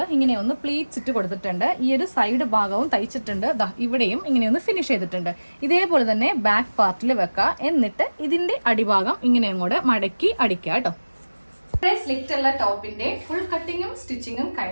ഇങ്ങനെ ഒന്ന് പ്ലീറ്റ്സ് ഇട്ട് കൊടുത്തിട്ടുണ്ട്. ഈ ഒരു സൈഡ് ഭാഗവും തയ്ച്ചിട്ടുണ്ട്. ഇവിടെയും ഇങ്ങനെ ഒന്ന് ഫിനിഷ് ചെയ്തിട്ടുണ്ട്. ഇതേപോലെ തന്നെ ബാക്ക് പാർട്ടിൽ വെക്കുക. എന്നിട്ട് ഇതിൻ്റെ അടിഭാഗം ഇങ്ങനെ അങ്ങോട്ട് മടക്കി അടിക്കുക കേട്ടോ. സ്ലിറ്റുള്ള ടോപ്പിന്റെ ഫുൾ കട്ടിങ്ങും സ്റ്റിച്ചിങ്ങും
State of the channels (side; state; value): both; inverted; correlation -1.00